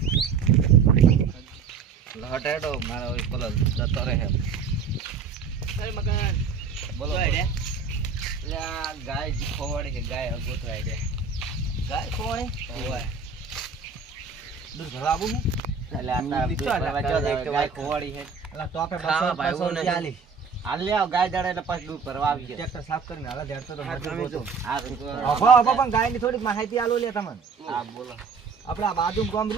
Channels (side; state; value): left; quieter; 5.5 dB